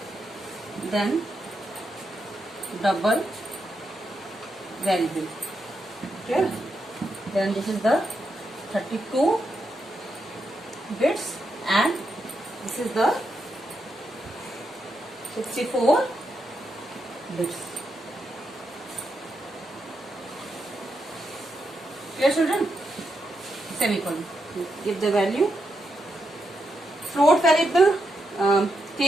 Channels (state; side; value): normal; both; correlation 0.83